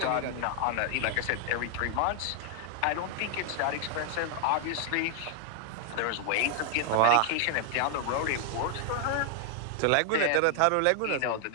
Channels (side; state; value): both; different; correlation 0.00